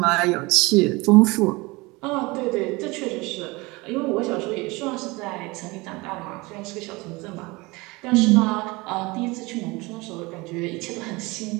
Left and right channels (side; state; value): left; quieter; 23.9 dB